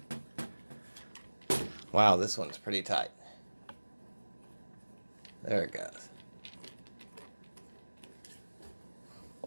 Wow, this one's pretty tight. There it goes.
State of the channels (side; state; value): both; inverted; correlation -1.00